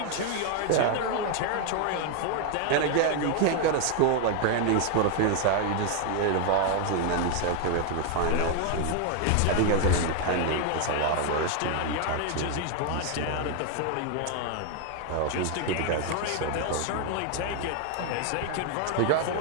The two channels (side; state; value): both; different; correlation 0.01